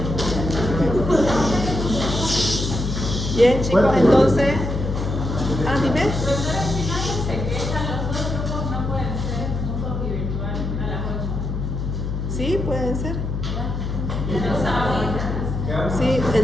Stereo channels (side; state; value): left; noise; hum, 3 dB below the sound